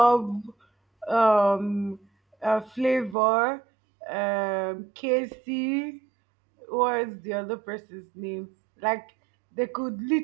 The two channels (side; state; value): left; drops out; at 3.2 s